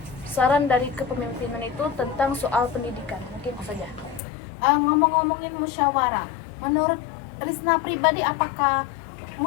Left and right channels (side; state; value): right; drops out; at 4.2 s